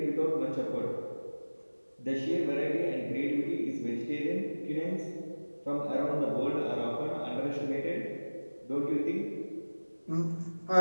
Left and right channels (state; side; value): inverted; both; correlation -1.00